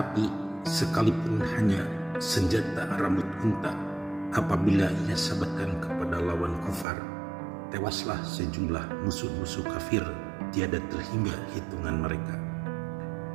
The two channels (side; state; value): left; drops out; at 6.9 s